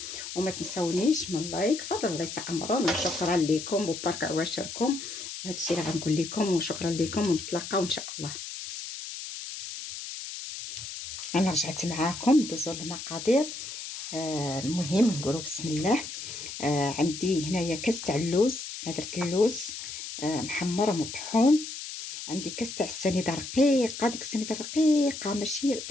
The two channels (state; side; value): noise; left; hiss, 8 dB below the sound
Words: وما تنسونيش من لايك، فضل الله يسعمرون، وشكرا لكم وبارك عواشركم. وهذا الشيء اللي غنقول لكم، وشكرا لكم، ونتلاقاو ان شاء الله. انا رجعت معاكم ندوزو المقادير. المهم نقولوا بسم الله. عندي هنايا كاس تاع اللوز، درت اللوز محمر ومطحون. عندي كاس تاع السنيده رقيقه، ديك السنيده رقيقه ماشي